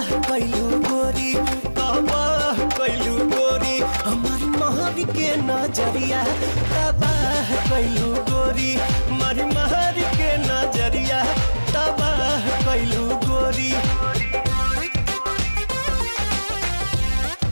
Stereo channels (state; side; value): inverted; both; correlation -1.00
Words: कैलू गोरी तबाह कैलू गोरी हमारी महर के नजरिया तबाह कैलू गोरी हमारी महर के नजरिया तबाह कैलू गोरी।